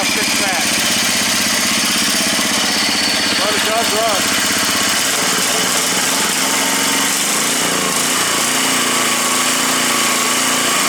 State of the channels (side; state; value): both; identical; correlation 1.00